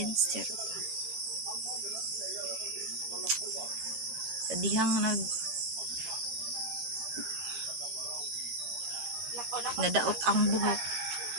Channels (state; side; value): late; left; 14 ms